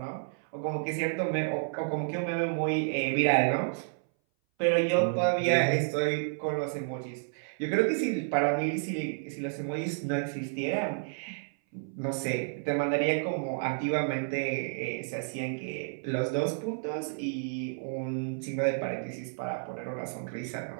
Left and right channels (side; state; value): left; silent; 57 dB below the other